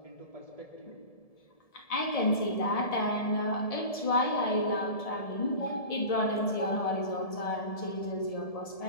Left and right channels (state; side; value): late; right; 1.7 ms